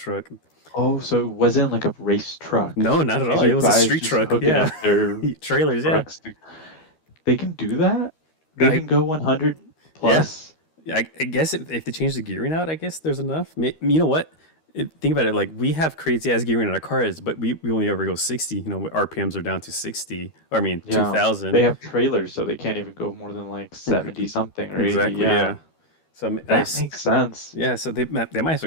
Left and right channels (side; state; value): right; late; 13 ms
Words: Oh, so it wasn't like a race truck. No, not at all. These It are was a guys street just truck. hooking Yeah, up their trailers. Yeah, trucks. They can do that? They I, can go 100 yeah. plus? I guess if they change the gearing out, I guess there's enough. You know what? Think about it. Like we have crazy ass gearing in our cars, but we only ever go 60. RPMs are down to 60. Or I mean Yeah. 2,000. They have trailers, so they can't even go more than like 70 something or 80. Exactly. Yeah. Yeah. So That makes sense. yeah, so they might have